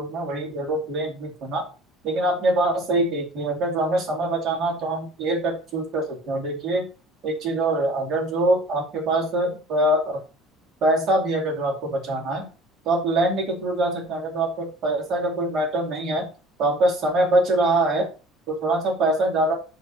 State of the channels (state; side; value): normal; both; correlation 0.46